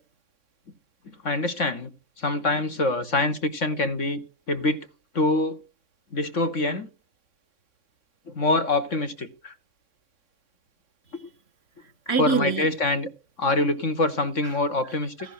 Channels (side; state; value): right; late; 3.6 ms